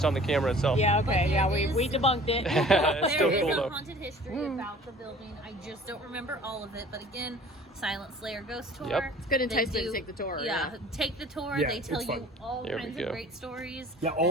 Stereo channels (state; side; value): normal; both; correlation 0.48